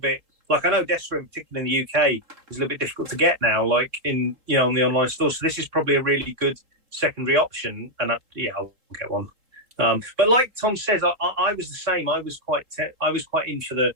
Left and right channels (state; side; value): late; left; 3.7 ms